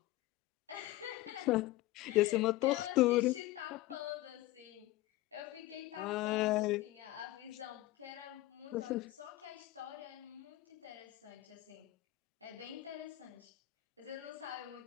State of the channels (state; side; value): quieter; right; 17.0 dB